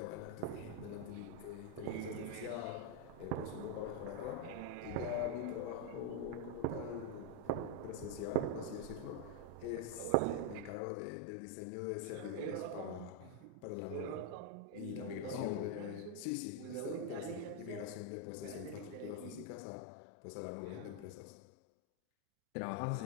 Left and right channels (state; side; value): different; both; correlation 0.01